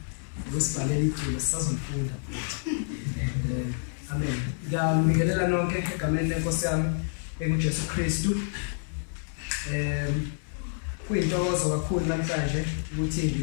ngosibhalela iculo sisazofunda. Amen. Ngiyamikelela nonke egameni lenkosi yami enguJesu Kristu. Kuyintokozo kakhulu namhlanje ukuthi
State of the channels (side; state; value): right; silent; digital silence